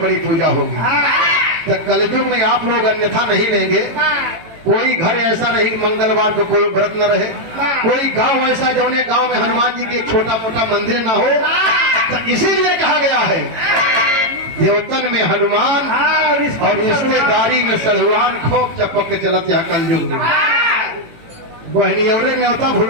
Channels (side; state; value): left; late; 18 ms